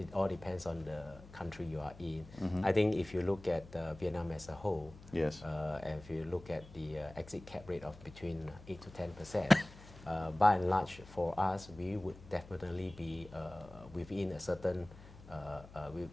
all depends on the country you are in. I think if you look at Vietnam as a whole, Yes. and if you look at the exit cap rate of between 8 to 10%, by and large, for us, we would definitely be within a certain,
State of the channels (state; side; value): noise; left; hum, 18 dB below the sound